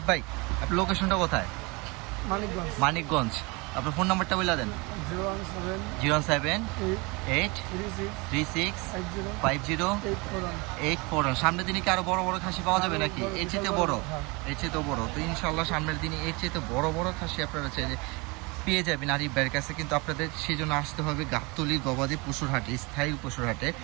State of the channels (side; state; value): left; quieter; 27.1 dB